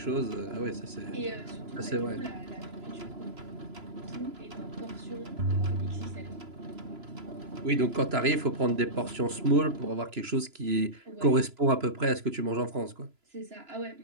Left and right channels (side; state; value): left; late; 3.0 ms